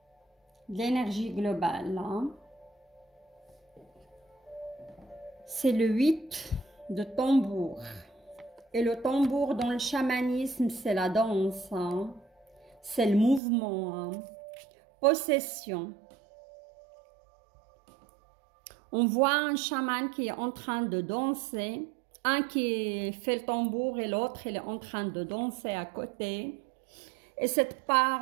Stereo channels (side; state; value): left; drops out; at 13.4 s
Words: de l'énergie globale. Hein. C'est le 8 de tambour. Et le tambour dans le chamanisme, c'est la danse. Hein. C'est le mouvement. Hein. Possession. On voit un chaman qui est en train de danser, un qui fait le tambour et l'autre il est en train de danser à côté. Et cette